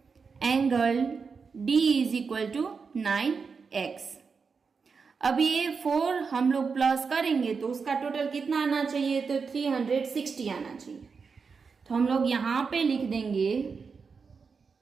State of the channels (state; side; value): quieter; left; 5.3 dB